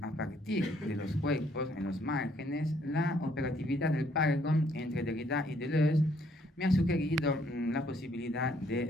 a partir de los cuerpos en los márgenes, la operatividad del Paragon entre Derrida y Deleuze me ha sugerido la posibilidad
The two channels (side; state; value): both; normal; correlation 0.66